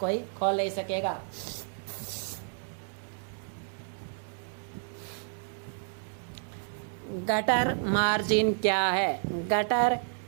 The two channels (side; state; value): left; silent; digital silence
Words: खोल नहीं सकेगा। गटर मार्जिन क्या है? गटर